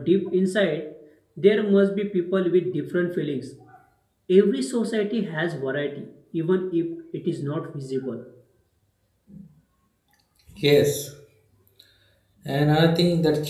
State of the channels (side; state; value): both; identical; correlation 1.00